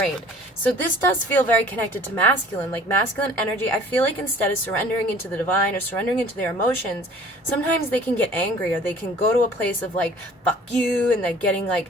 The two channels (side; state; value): both; normal; correlation 0.50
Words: So this does feel very connected to masculine. Like masculine energy, I feel like instead of surrendering into the divine or surrendering into their emotions, sometimes they can get angry, or they can go to a place of like, fuck you, and they're getting like,